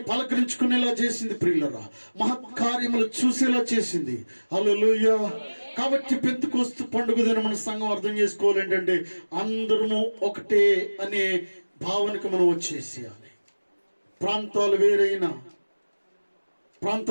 పలకరించుకునేలా చేసింది. ప్రియులరా, మహత్కార్యములు చూసేలా చేసింది. హల్లెలూయా. కాబట్టి పెంతెకోస్తు పండుగ దిన మన సంఘం అర్థం చేసుకోవాలి ఏంటంటే అందరము ఒకటే అనే భావనకు మనం వచ్చేసేయాలి. ప్రాంతాలు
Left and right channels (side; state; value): both; inverted; correlation -1.00